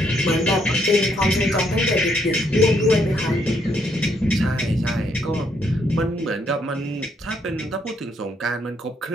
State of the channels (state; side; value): normal; both; correlation 0.73